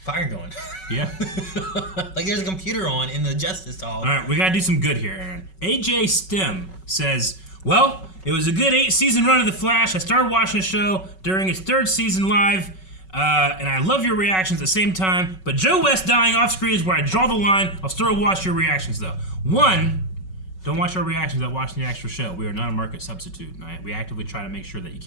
fire going. Yeah. Like there's a computer on in the Justice Hall. All right, we gotta do some good here, Aaron. AJ Stem says, "Well, it was a good 8-season run of The Flash. I started watching the show during its 3rd season live." And I love your reactions at the same time, but Joe West dying off screen is where I draw the line. I'll still watch your reactions though. 1, don't watch our reactions without watching the actual show. We are not a market substitute. We actively try to make sure that you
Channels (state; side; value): late; right; 5.3 ms